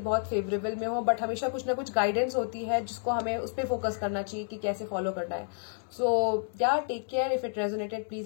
बहुत फेवरेबल में हो, बट हमेशा कुछ ना कुछ गाइडेंस होती है जिसको हमें उस पर फोकस करना चाहिए कि कैसे फॉलो करना है। So yeah take care. If it resonated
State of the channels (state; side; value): silent; right; digital silence